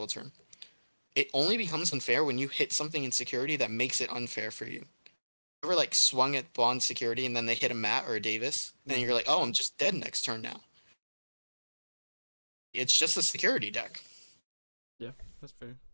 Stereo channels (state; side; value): inverted; both; correlation -1.00